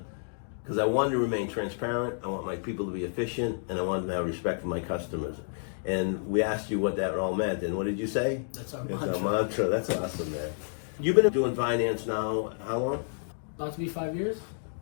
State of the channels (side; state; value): right; silent; digital silence